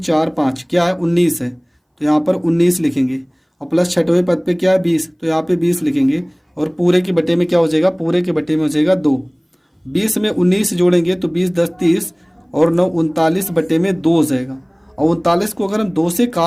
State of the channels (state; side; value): identical; both; correlation 1.00